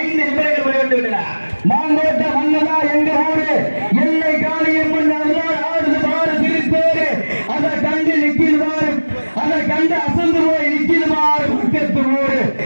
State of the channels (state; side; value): inverted; both; correlation -1.00